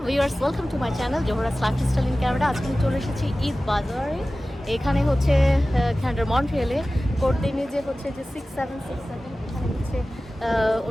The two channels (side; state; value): both; normal; correlation 0.96